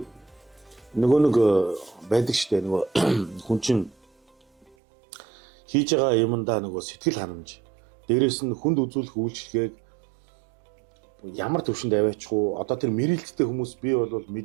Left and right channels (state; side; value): drops out; left; at 4.8 s